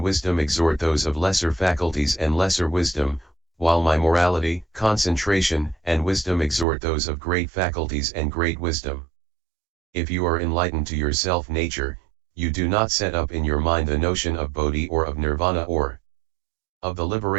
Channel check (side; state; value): left; drops out; at 6.7 s